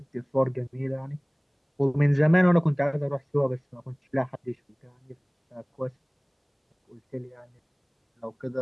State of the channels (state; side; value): identical; both; correlation 1.00